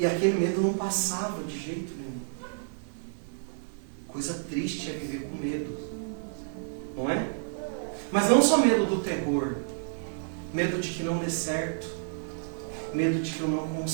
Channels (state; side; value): silent; left; digital silence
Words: aquele medo não passava de jeito nenhum. Coisa triste é viver com medo. Não é? Mas não só medo do terror. Medo de que não dê certo. Medo de que eu não